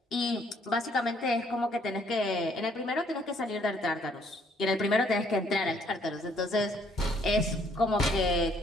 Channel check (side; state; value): both; normal; correlation 0.65